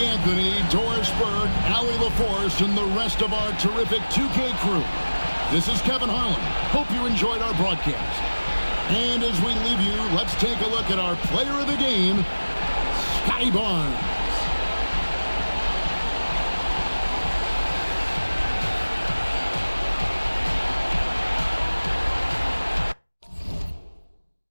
Anthony, Doris Berg, Allie LaForce, and the rest of our terrific 2K crew, this is Kevin Harlan. Hope you enjoyed our broadcast. And as we leave you, let's take a look at our player of the game, Scotty Barnes.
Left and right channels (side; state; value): both; inverted; correlation -1.00